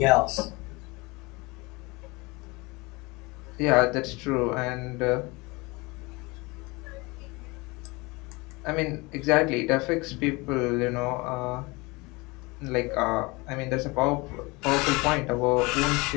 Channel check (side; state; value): right; quieter; 24.9 dB